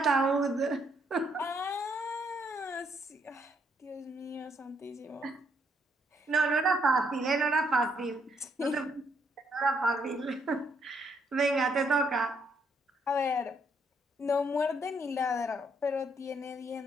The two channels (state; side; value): normal; both; correlation 0.72